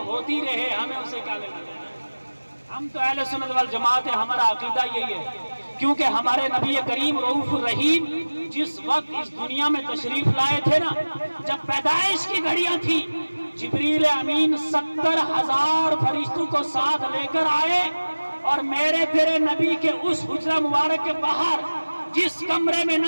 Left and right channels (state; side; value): inverted; both; correlation -1.00